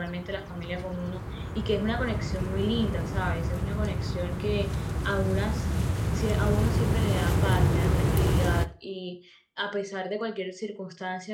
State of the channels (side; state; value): both; identical; correlation 1.00